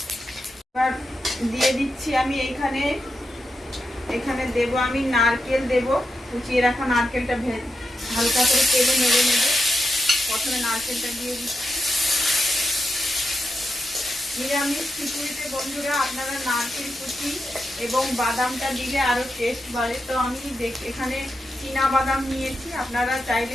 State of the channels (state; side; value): normal; both; correlation 0.86